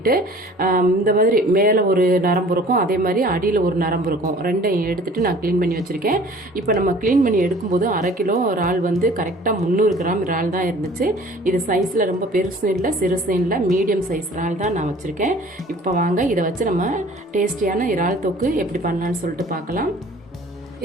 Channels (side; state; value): both; normal; correlation 0.49